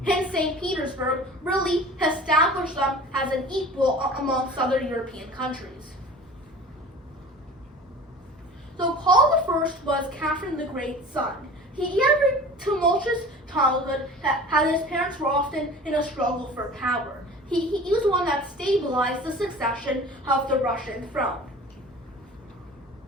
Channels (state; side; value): normal; both; correlation 0.41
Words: in St. Petersburg really established them as an equal amongst other European countries. So Paul I was Catherine the Great's son. He had a tumultuous childhood, as his parents were often in a struggle for power. He was the one that stabilized the succession of the Russian throne.